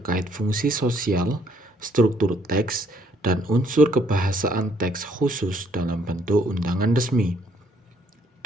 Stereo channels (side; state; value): both; normal; correlation 0.66